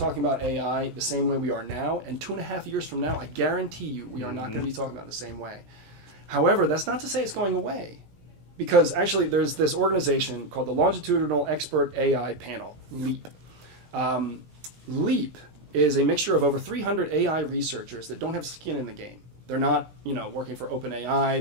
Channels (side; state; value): left; late; 17 ms